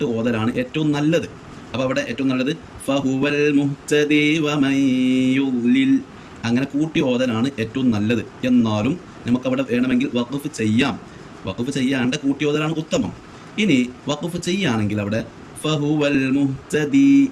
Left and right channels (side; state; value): both; identical; correlation 1.00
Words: ഓതലാണ് ഏറ്റവും നല്ലത്. അപ്പോൾ അവിടെ ഏറ്റവും നല്ലത് ഫഹുവൽ മുഹ്തദി വമൻ യുദ്ലിൽ, അങ്ങനെ കൂട്ടി ഓതലാണ് ഏറ്റവും നല്ലത്. എന്നാലും നമുക്കവിടെ വേണമെങ്കിൽ വഖഫ് ചെയ്യാം. വഖഫ് ചെയ്യാണ്ട് കൂട്ടി ഓതലാണ് ഉത്തമം. ഇനി വഖഫ് ചെയ്യുകയാണെങ്കിൽ അവിടെ ഫഹുവൽ മുഹ്തദി